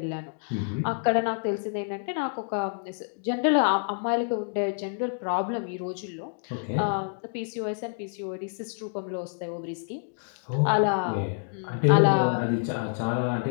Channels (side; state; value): right; silent; digital silence